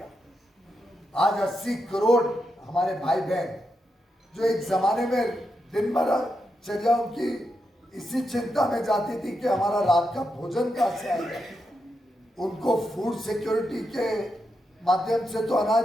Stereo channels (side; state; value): both; normal; correlation 0.85